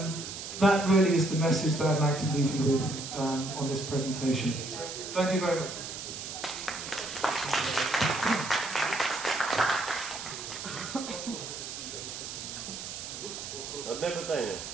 that really is the message that I'd like to leave you with on this presentation. So, thank you very much. Одне питання.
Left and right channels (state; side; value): noise; right; hiss, 8 dB below the sound